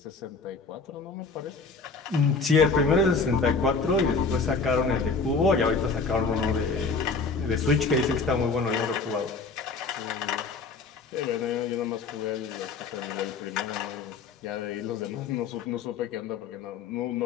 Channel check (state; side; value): quieter; right; 4.4 dB